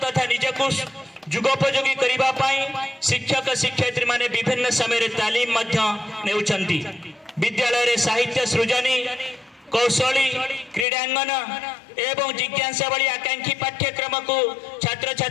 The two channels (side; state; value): right; drops out; at 10.9 s